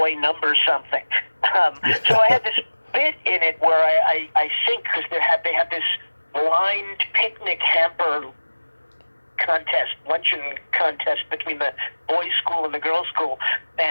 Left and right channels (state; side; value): inverted; both; correlation -1.00